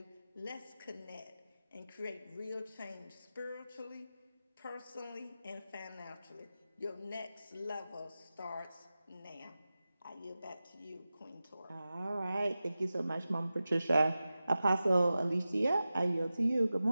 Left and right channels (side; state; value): both; inverted; correlation -0.94